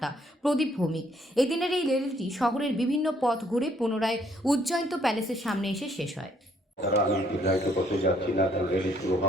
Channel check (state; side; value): normal; both; correlation 0.66